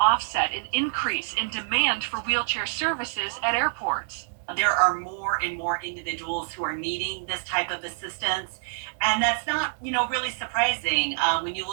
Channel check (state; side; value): silent; left; 61 dB below the other